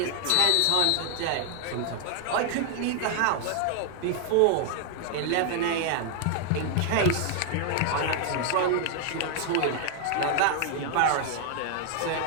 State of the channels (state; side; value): different; both; correlation 0.00